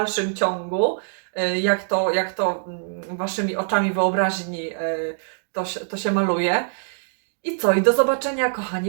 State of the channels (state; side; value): silent; left; digital silence